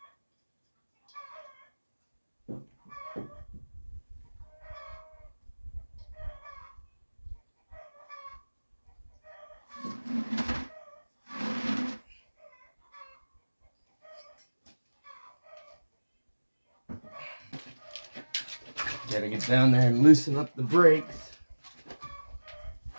Gotta get down there and loosen up the brakes.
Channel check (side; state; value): both; inverted; correlation -1.00